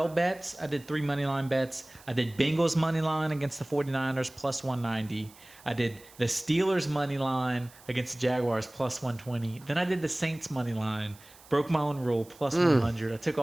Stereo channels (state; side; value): noise; right; hiss, 23 dB below the sound